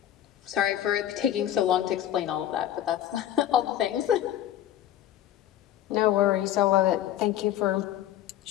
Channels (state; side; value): quieter; right; 11.9 dB